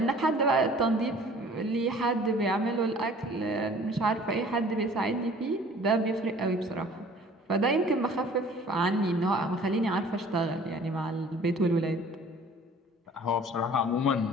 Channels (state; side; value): normal; both; correlation 0.50